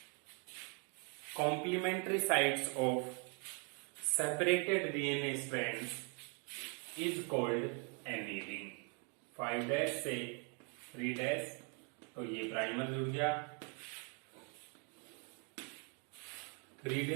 complementary sides of separated DNA strands is called annealing। 5' से 3' तो ये प्राइमर जुड़ गया,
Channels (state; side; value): quieter; left; 37.2 dB